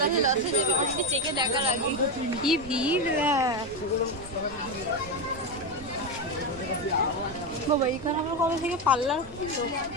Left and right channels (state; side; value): noise; right; rumble, 17 dB below the sound